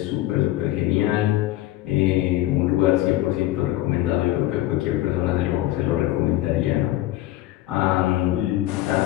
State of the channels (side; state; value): right; quieter; 15.6 dB